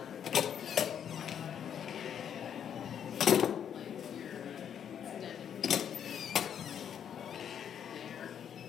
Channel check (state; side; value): quieter; right; 8.7 dB